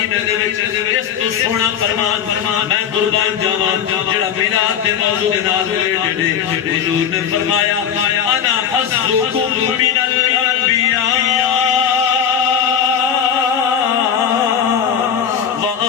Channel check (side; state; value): right; quieter; 8.3 dB